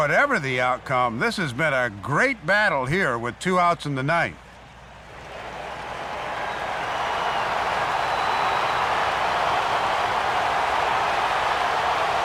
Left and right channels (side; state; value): both; identical; correlation 1.00